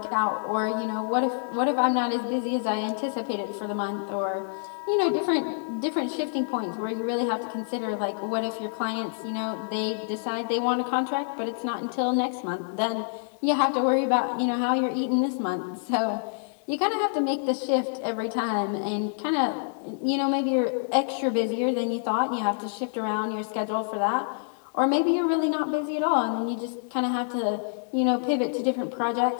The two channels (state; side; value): silent; right; 60 dB below the other